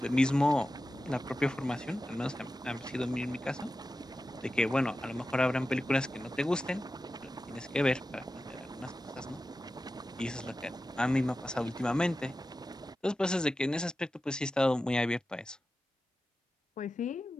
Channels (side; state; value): both; normal; correlation 0.93